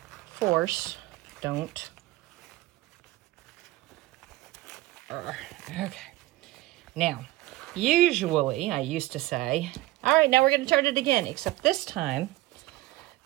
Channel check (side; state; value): left; quieter; 17.8 dB